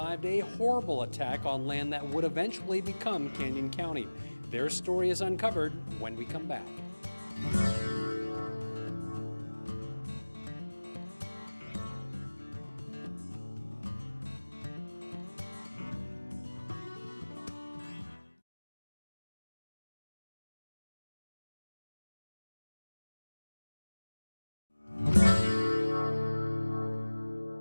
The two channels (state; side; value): inverted; both; correlation -1.00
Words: a horrible attack on land that would eventually become Canyon County. Their story is uncovered when we come back.